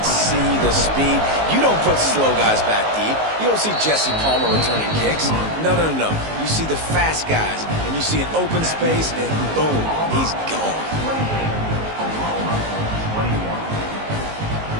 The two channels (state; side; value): late; left; 19 ms